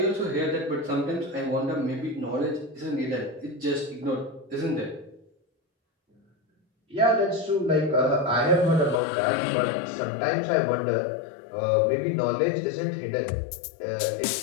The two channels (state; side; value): drops out; right; at 9.0 s